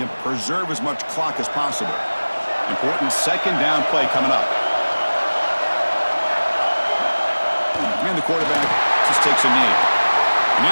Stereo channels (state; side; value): inverted; both; correlation -1.00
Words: and preserve as much clock as possible. Important 2nd down play coming up. And the quarterback just takes a knee. And